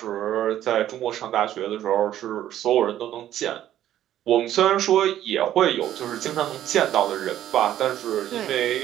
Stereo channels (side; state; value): left; quieter; 12.1 dB